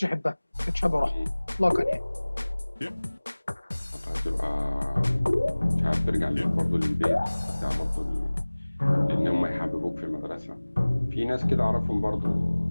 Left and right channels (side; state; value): both; inverted; correlation -1.00